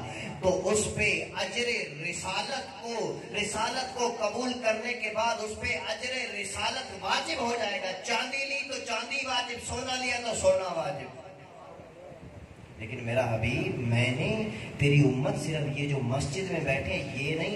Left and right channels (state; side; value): identical; both; correlation 1.00